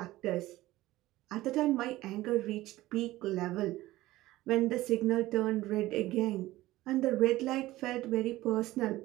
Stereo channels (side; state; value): left; quieter; 17.0 dB